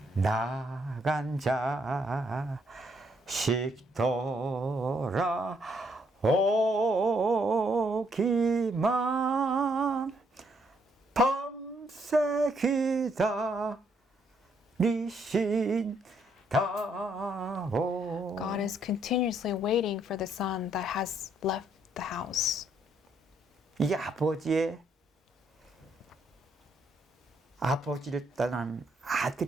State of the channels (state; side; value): normal; both; correlation 0.72